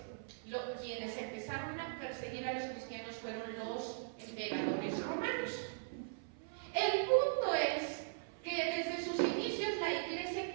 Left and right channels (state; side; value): silent; left; 51 dB below the other